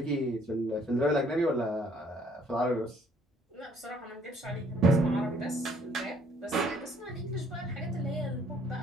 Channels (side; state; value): both; normal; correlation 0.62